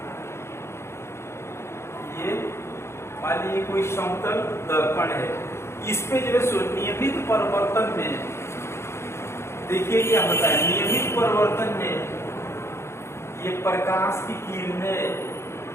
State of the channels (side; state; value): right; late; 0.13 ms